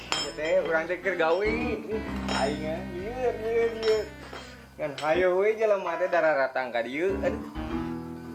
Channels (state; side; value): identical; both; correlation 1.00